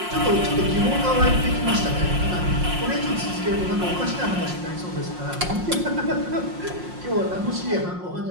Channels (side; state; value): left; late; 5.6 ms